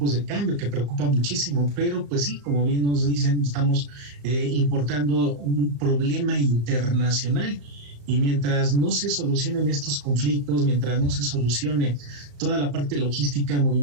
de cambio, que preocupa muchísimo, pero pues sí, como bien nos dicen, estamos importando un problema internacional. Y mientras no se solucionen estos conflictos, mientras no se solucione toda la parte logística,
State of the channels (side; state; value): left; late; 35 ms